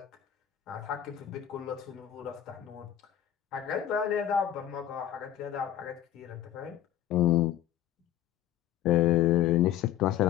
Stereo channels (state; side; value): quieter; right; 11.5 dB